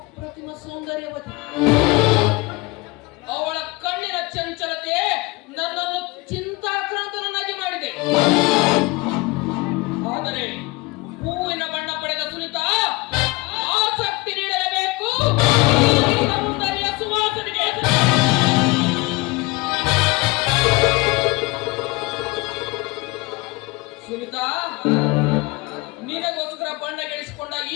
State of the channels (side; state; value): right; quieter; 23.9 dB